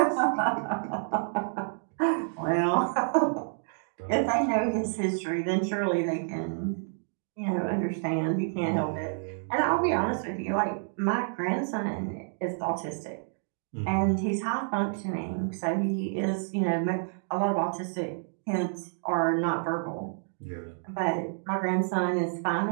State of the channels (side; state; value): left; silent; digital silence